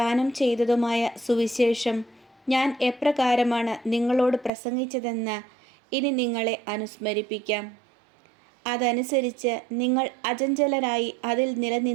ചെയ്തതുമായ സുവിശേഷം ഞാൻ എപ്രകാരമാണ് നിങ്ങളോട് പ്രസംഗിച്ചതെന്ന് ഇനി നിങ്ങളെ അനുസ്മരിപ്പിക്കാം. അതനുസരിച്ച് നിങ്ങൾ അചഞ്ചലരായി അതിൽ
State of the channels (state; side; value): drops out; left; at 4.5 s